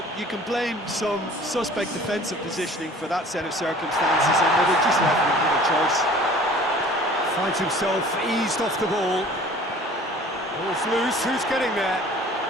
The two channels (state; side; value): normal; both; correlation 0.48